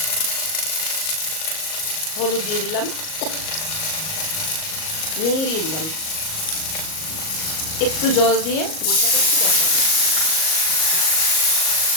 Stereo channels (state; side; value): late; right; 38 ms